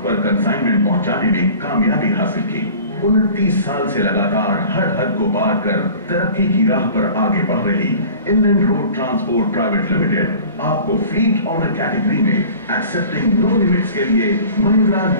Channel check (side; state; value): both; inverted; correlation -0.43